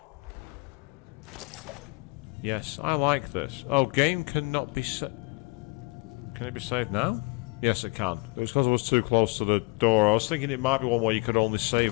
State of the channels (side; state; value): right; quieter; 29.7 dB